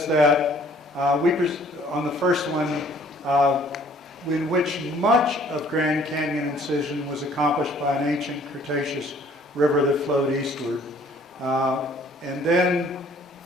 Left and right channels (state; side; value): normal; both; correlation 0.58